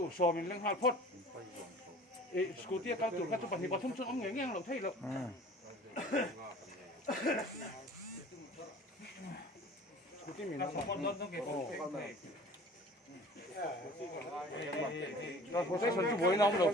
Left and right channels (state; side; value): normal; both; correlation 0.45